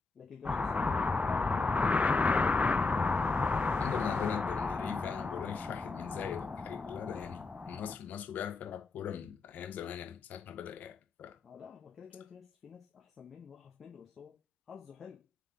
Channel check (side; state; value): right; quieter; 3.9 dB